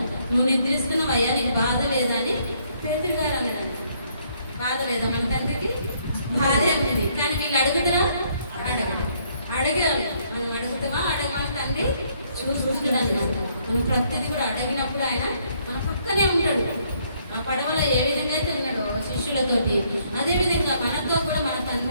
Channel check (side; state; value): both; inverted; correlation -0.68